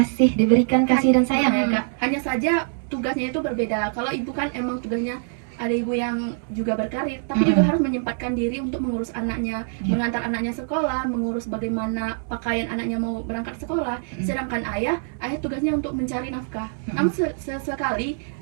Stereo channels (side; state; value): left; silent; 63 dB below the other